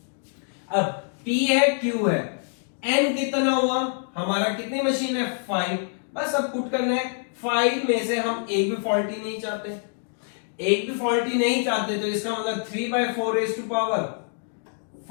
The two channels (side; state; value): right; silent; digital silence